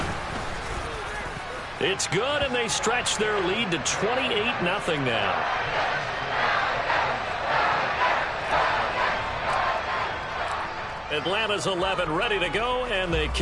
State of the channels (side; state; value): both; identical; correlation 1.00